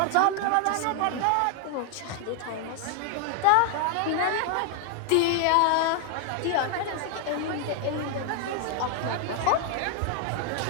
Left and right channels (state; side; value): different; both; correlation 0.00